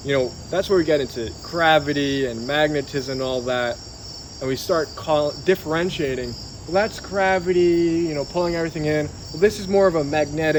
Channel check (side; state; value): both; identical; correlation 1.00